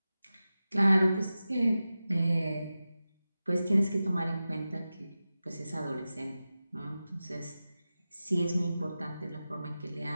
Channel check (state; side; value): inverted; both; correlation -0.94